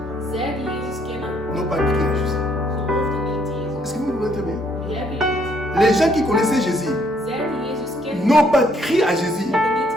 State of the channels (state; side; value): normal; both; correlation 0.68